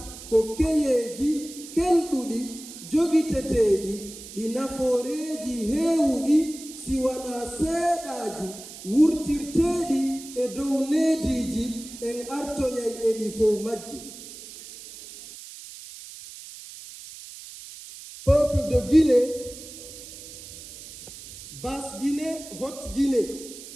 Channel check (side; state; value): right; noise; hiss, 14 dB below the sound